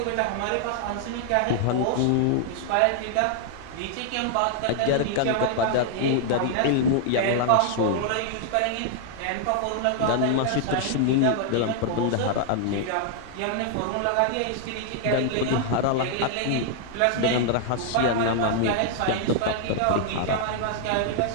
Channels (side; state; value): both; different; correlation -0.01